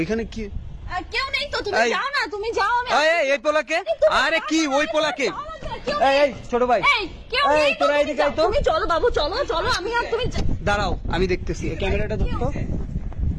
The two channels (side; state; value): both; identical; correlation 1.00